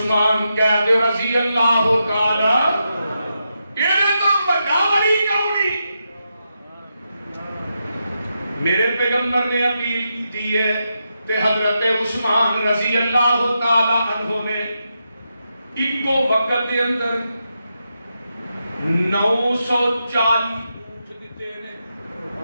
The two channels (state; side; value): inverted; both; correlation -0.85